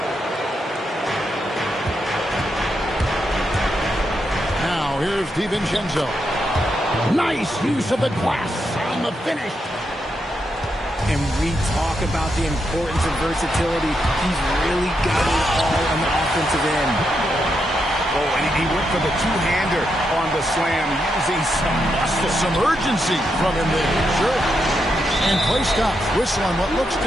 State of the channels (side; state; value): both; normal; correlation 0.82